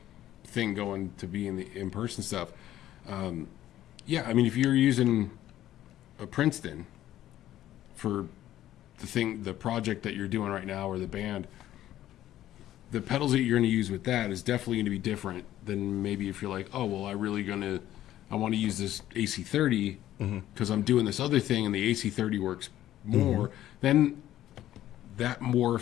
thing going to be in the in-person stuff. Yeah, I mean, if you're using a Princeton for the project that you're doing right now, or the band, the pedals that you're going to use with that is definitely going to be different than maybe if you're like, oh, well, I want to use this AC30 because I'm doing this other thing and the AC30 works more. Then that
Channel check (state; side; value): quieter; right; 13.1 dB